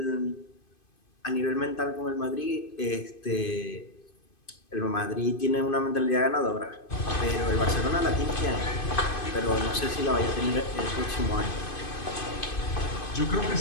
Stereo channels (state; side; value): late; right; 2.5 ms